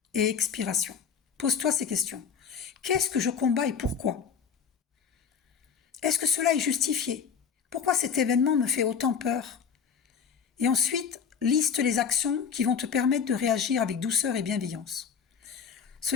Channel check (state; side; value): quieter; right; 6.7 dB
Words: et expiration. Pose-toi ces questions. Qu'est-ce que je combats et pourquoi? Est-ce que cela est justifié? Pourquoi cet événement me fait autant peur? Et ensuite, liste les actions qui vont te permettre de réagir avec douceur et bienveillance. Ce